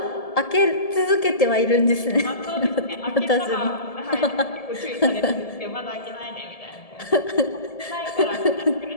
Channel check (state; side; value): late; right; 1.7 ms